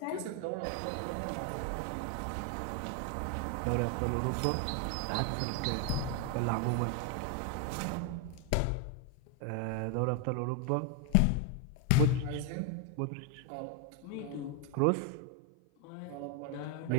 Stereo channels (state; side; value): different; both; correlation 0.01